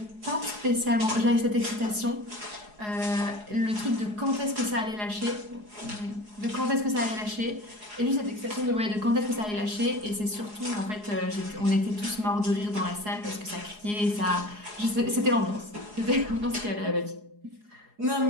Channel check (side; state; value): left; late; 4.8 ms